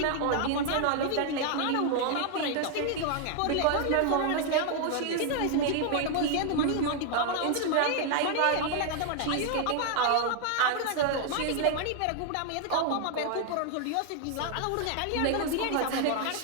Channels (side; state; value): both; different; correlation 0.00